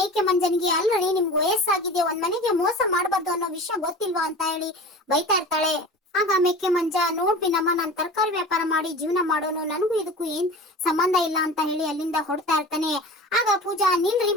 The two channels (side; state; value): both; normal; correlation 0.36